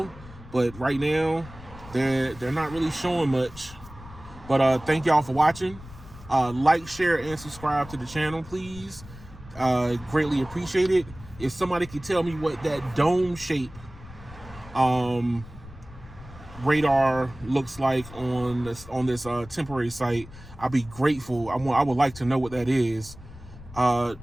but right now, they're not really showing much. But thank y'all for watching. Like, share, and subscribe to the channel, please. Greatly appreciate it. If somebody could tell me what that dome shape radar looks like on this temporary site, I'd be grateful. I would like to know what that is.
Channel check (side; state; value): left; noise; rumble, 18 dB below the sound